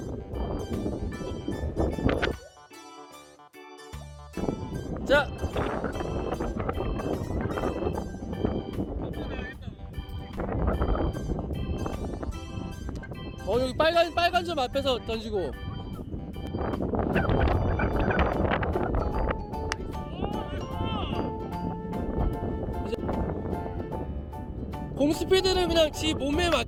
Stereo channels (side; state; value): both; identical; correlation 1.00